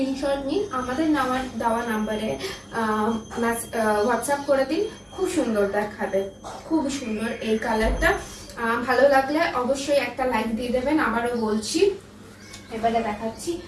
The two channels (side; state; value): both; identical; correlation 1.00